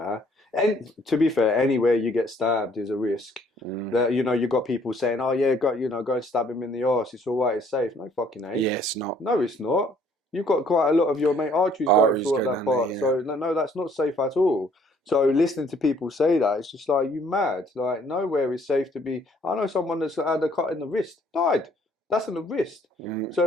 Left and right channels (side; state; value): both; normal; correlation 0.61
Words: and to be fair, anywhere you get stabbed is a risk. That, you know, you've got people saying, "Oh yeah, go and stab him in the arse. It's all right. It's safe." No fucking ain't. Yeah, it's not. No, it's not. You've got quite a lot of your arteries going through that part. There, yeah. So no, that's not safe at all. So listening to people say that, it's just like, you mad. Like, nowhere is safe to be. I know someone that's had a cut in the wrist, died. That's in the wrist.